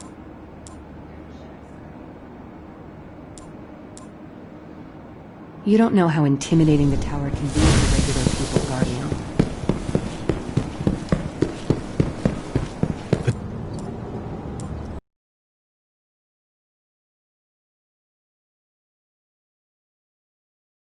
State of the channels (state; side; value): identical; both; correlation 1.00